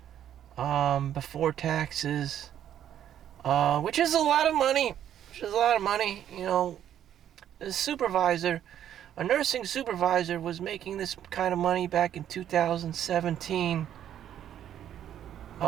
before taxes, which is a lot of money. A nursing supervisor was making this kind of money back in 2017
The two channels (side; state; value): left; quieter; 10.5 dB